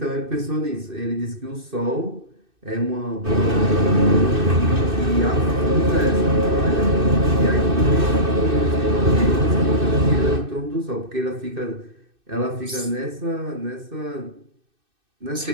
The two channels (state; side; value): late; left; 2.6 ms